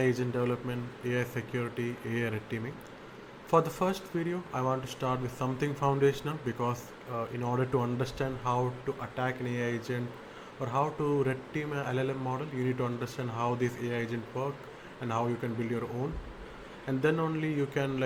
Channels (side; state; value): both; identical; correlation 1.00